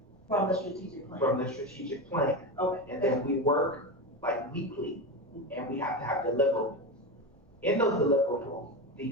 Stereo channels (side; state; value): both; normal; correlation 0.19